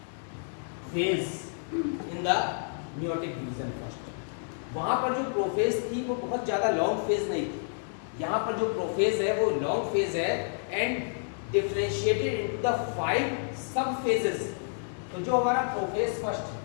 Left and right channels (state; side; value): silent; right; digital silence